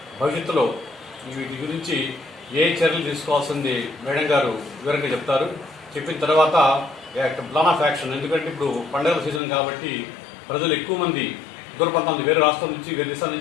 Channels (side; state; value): right; drops out; at 9.4 s